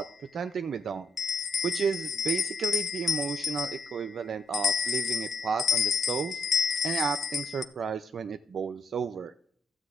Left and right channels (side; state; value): both; normal; correlation 0.69